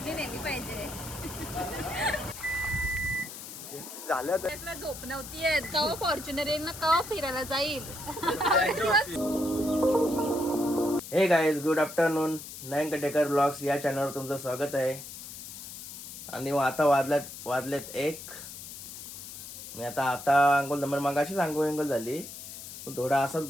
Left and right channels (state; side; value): noise; left; hiss, 11 dB below the sound